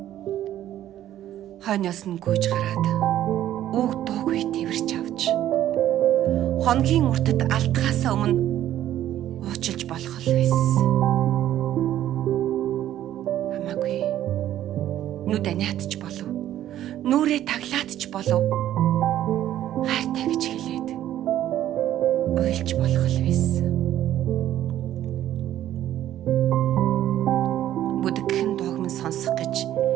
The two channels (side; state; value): left; quieter; 12.3 dB